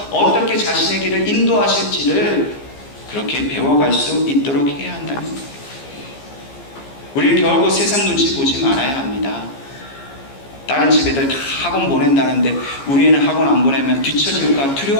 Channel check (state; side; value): late; right; 15 ms